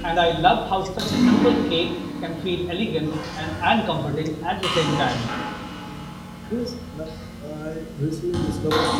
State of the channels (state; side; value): identical; both; correlation 1.00